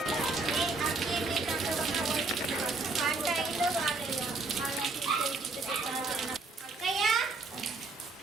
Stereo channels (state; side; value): quieter; left; 3.6 dB